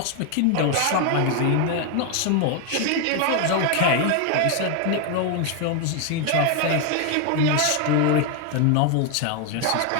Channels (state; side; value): different; both; correlation 0.01